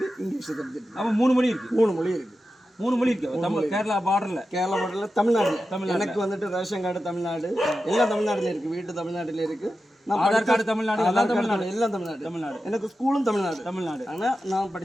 இங்கிலீஷ் சப்ஜெக்ட். அப்போ 3 மொழி இருக்குது. 3 மொழி இருக்குது. 3 மொழி இருக்குது. தமிழ் கேரளா பார்டரில். கேரளா பார்டரில் தமிழ்நாடு. எனக்கு வந்துட்டு ரேஷன் கார்டு தமிழ்நாடு, எல்லாம் தமிழ்நாட்டில் இருக்குது. வீட்டு தமிழ்நாட்டில் இருக்குது. ஆதார் கார்டு தமிழ்நாடு, எல்லாம் தமிழ்நாடு. எல்லாம் தமிழ்நாடு. எனக்கு ஸ்கூலும் தமிழ்நாடு. ஆனால் நான்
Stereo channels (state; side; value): normal; both; correlation 0.91